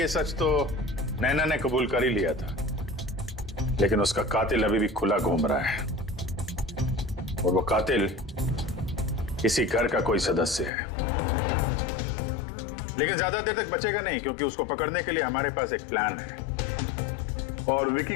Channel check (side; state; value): right; drops out; at 10.7 s